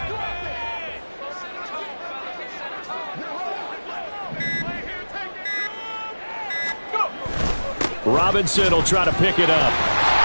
Robinson will try to pick it up.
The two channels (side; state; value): both; inverted; correlation -1.00